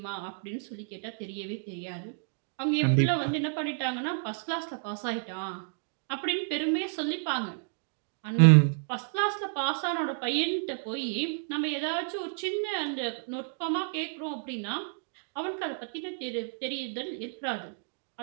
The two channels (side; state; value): left; silent; digital silence